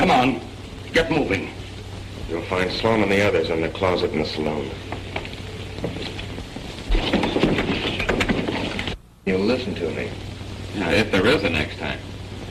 on, get moving. You'll find Sloan and the others in the closet in the saloon. You'll listen to me. Yeah, if there is a next time.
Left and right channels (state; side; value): identical; both; correlation 1.00